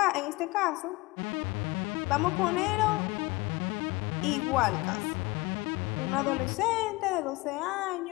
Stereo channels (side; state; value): right; quieter; 22.3 dB